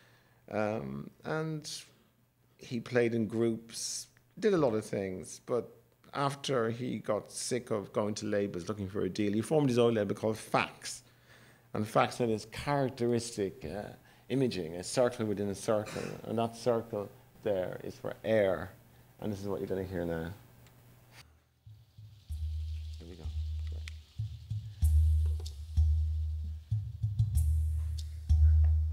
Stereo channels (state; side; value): identical; both; correlation 1.00